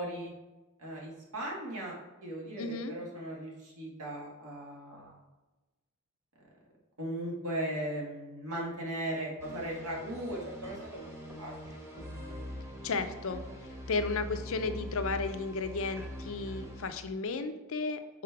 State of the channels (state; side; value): normal; both; correlation 0.00